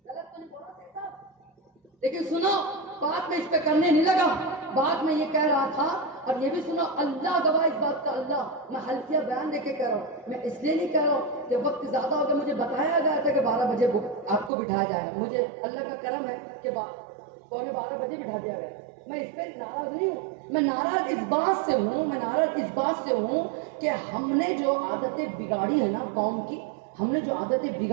غلط تو نہیں بولا تھا، لیکن سنو بات میں اس پہ کرنے نہیں لگا، بات میں یہ کہہ رہا تھا، اور یہ بھی سنو اللہ گواہ اس بات کا، اللہ میں حلفیہ بیان دے کے کہہ رہا ہوں، میں اس لیے نہیں کہہ رہا ہوں کہ وقت زیادہ ہو گیا، مجھے بتایا گیا تھا کہ 12 بجے آپ کو بٹھایا جائے گا، مجھے اللہ کا کرم ہے کہ 12:15 بجے بٹھا دیا گیا۔ میں اس پہ ناراض نہیں ہوں، میں ناراض اس بات سے ہوں، میں ناراض اس بات سے ہوں کہ ہم نے جو عادتیں بگاڑی ہے نا قوم کی، ہم نے جو عادتیں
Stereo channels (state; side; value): drops out; left; at 14.5 s